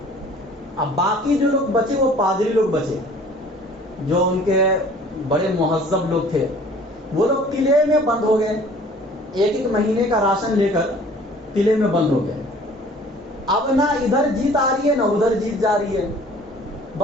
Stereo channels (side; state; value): both; normal; correlation 0.51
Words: اب باقی جو لوگ بچے وہ پادری لوگ بچے، جو ان کے بڑے مہذب لوگ تھے، وہ لوگ قلعے میں بند ہو گئے، ایک ایک مہینے کا راشن لے کر قلعے میں بند ہو گئے۔ اب نہ ادھر جیت آ رہی ہے نہ ادھر جیت جا رہی ہے،